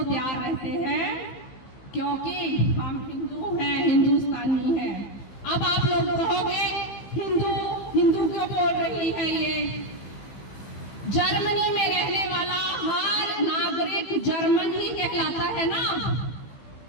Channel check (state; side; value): late; right; 15 ms